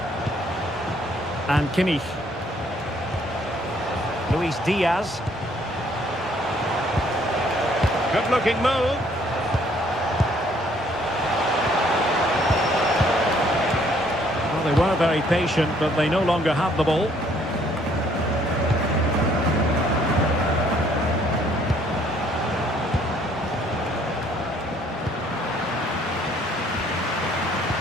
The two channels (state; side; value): normal; both; correlation 0.63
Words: And Kimmich. Luis Diaz. Good-looking move. Well, they were very patient, but they no longer have the ball.